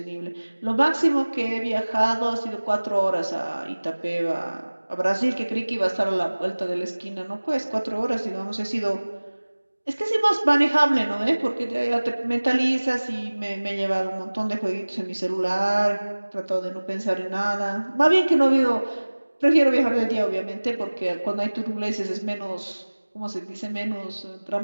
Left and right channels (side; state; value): both; inverted; correlation -1.00